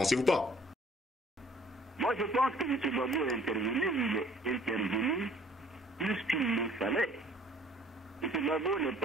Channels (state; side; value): normal; both; correlation 0.55